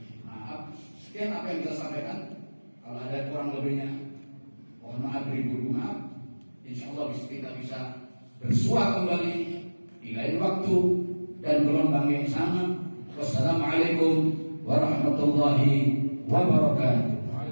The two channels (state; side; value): inverted; both; correlation -1.00